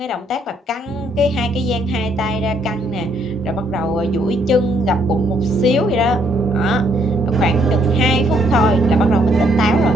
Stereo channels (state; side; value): normal; both; correlation 0.69